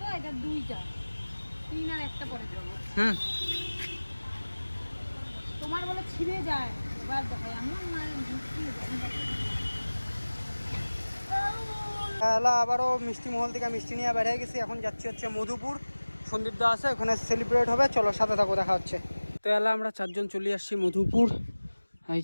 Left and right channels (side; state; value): both; inverted; correlation -1.00